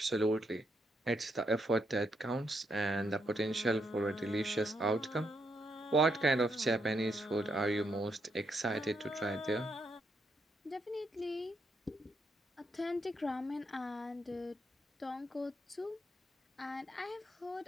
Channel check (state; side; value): normal; both; correlation 0.78